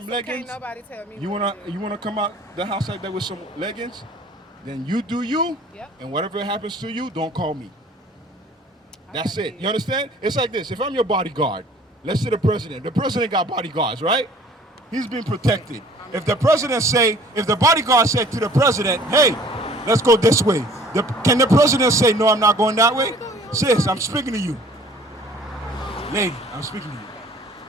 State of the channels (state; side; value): normal; both; correlation 0.52